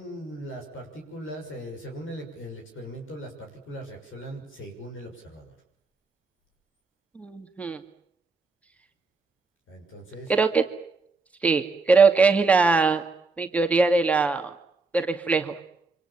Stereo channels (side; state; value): left; quieter; 3.9 dB